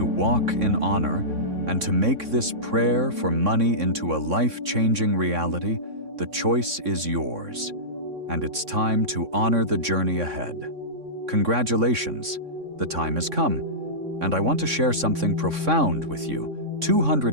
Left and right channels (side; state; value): left; late; 3.6 ms